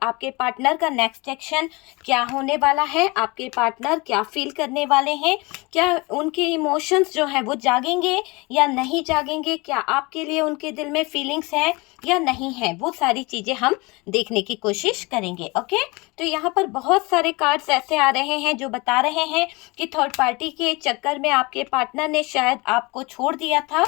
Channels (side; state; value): right; quieter; 25.4 dB